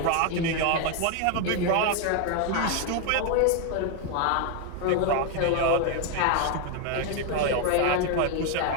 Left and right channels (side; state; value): both; different; correlation 0.01